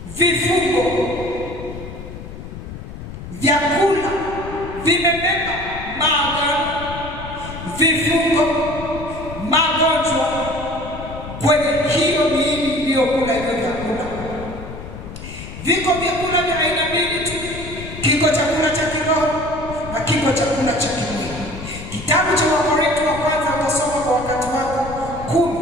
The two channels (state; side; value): noise; left; rumble, 11 dB below the sound